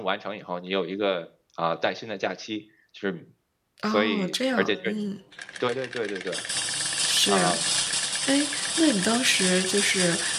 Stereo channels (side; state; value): both; identical; correlation 1.00